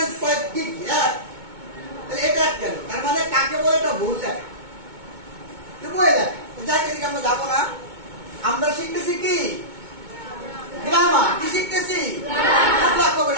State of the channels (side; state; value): left; late; 2.2 ms